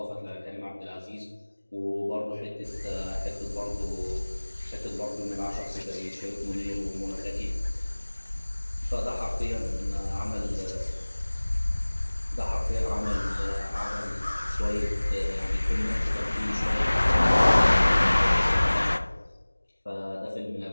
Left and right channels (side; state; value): both; inverted; correlation -1.00